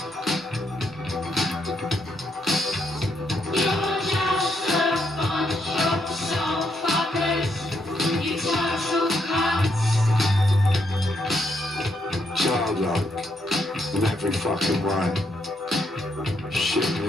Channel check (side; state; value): both; normal; correlation 0.77